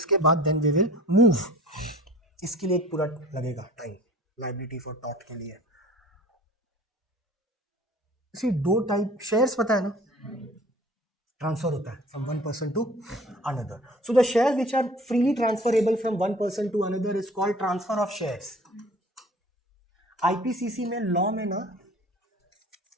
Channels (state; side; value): normal; both; correlation 0.46